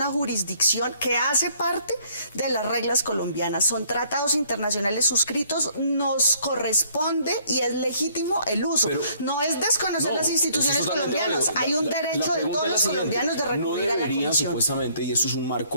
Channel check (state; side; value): inverted; both; correlation -0.62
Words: jurisdicción que hace parte de las reglas colombianas. Son tratados internacionales suscritos, nos corresponde y es legítimo el uso. Pero- no es desconocer No, las instituciones eso es totalmente colombianas. válido. Hay un La derecho de pregunta todos es la los siguiente. colombianos de No recurrir a la deberían, Comisión. supuestamente, y esto es un